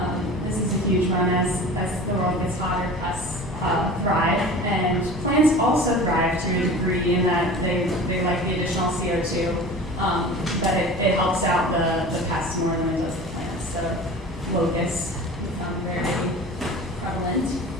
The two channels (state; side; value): normal; both; correlation 0.38